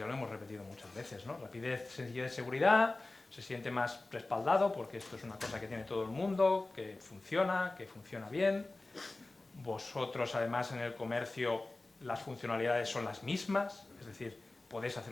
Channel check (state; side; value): quieter; right; 3.1 dB